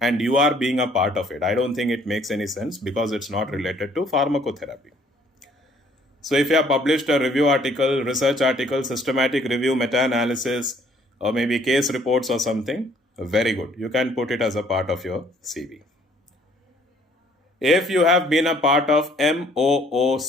and you are being a part of it. I don't think it makes any sense because it's not related to pharmacotherapy. So if you have published a review article, research article, systematic review, meta-analysis, or maybe case reports or something, very good. You can put it as a part of your CV. If you have been a part of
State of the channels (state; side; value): normal; both; correlation 0.61